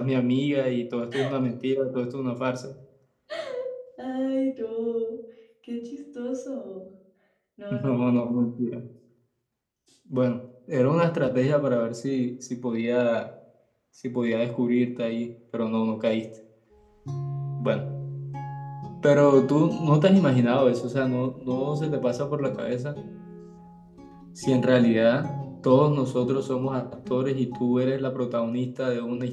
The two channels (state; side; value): identical; both; correlation 1.00